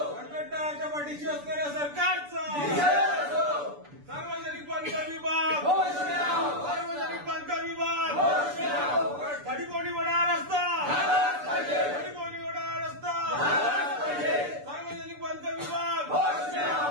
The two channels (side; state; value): left; late; 6.9 ms